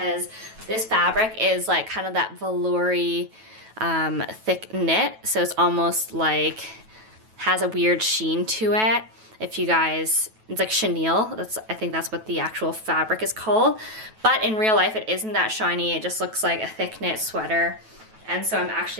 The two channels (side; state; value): left; late; 9.2 ms